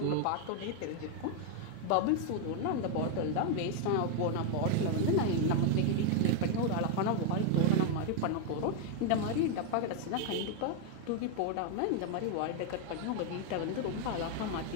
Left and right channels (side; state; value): both; different; correlation 0.01